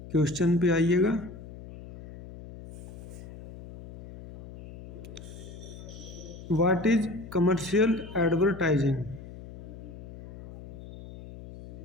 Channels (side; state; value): left; noise; hum, 15 dB below the sound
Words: क्वेश्चन पे आइएगा। What is commercial advertising?